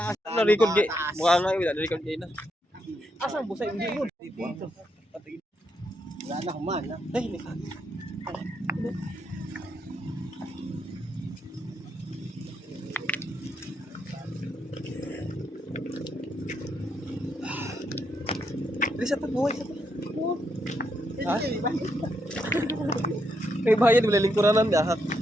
Na-record gay. Mukha nga yun, na-record gay na. Asan busay? Hindi yun. Dito. Wala na kuman. Ay, hindi ka. Dili sa tabuhay sa tabuhay. Ha? May bayad, wala lingkuranan dahak.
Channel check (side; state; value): both; normal; correlation 0.79